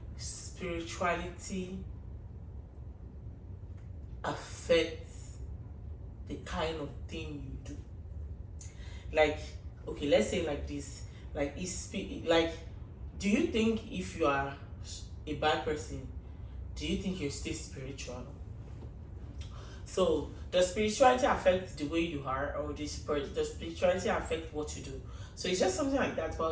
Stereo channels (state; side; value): identical; both; correlation 1.00